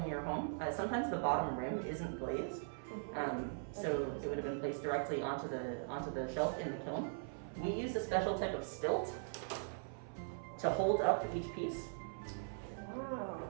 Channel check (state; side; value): silent; left; 51 dB below the other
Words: your home, sometimes the bottom rim isn't glazed, so it would have been placed directly onto the shelf in the kiln. We use a special type of stilt to hold up each piece. Wow.